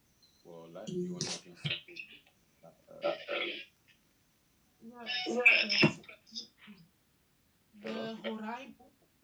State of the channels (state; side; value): identical; both; correlation 1.00